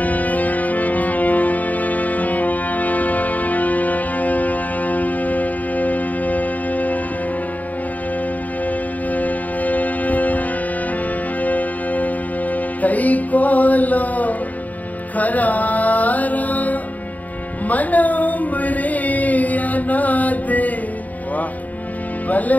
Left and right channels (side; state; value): right; late; 0.076 ms